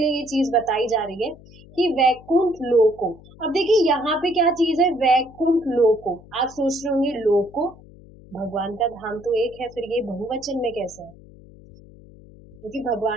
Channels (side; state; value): left; noise; hum, 22 dB below the sound